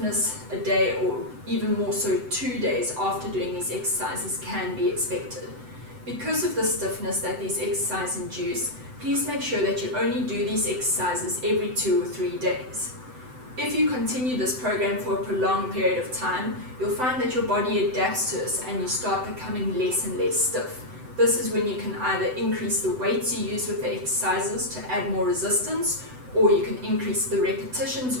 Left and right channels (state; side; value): late; left; 7.9 ms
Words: a day or even more so 2 days after doing these exercises can be expected. Because of the stiffness that these exercises induce, please make sure that you only do these exercises every 2 or 3 days. If you continue this program for a prolonged period of time, you'll find that your body adapts to this and you start becoming less and less stiff. This is when you can either increase the weights you use with the exercises to add more resistance, or you can increase the